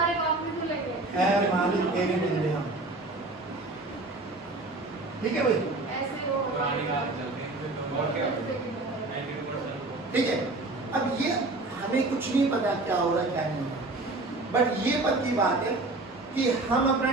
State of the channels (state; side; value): quieter; left; 3.0 dB